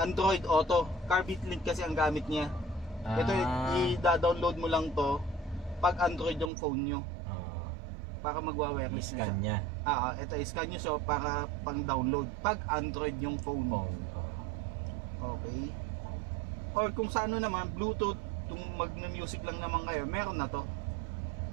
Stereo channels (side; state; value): left; drops out; at 6.5 s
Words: Auto. Carbit link kasi ang gamit niya. Ito i-download mo lang to pag Android yung phone nyo. Para magwa-wireless na siya. Ito i-scan nyo so para pang-download pag Android yung phone. Okay. Or kung sa ano naman, Bluetooth, kung mag-music lang naman kayo, meron na to.